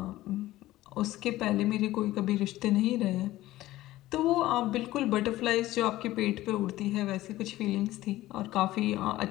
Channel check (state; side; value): quieter; right; 16.2 dB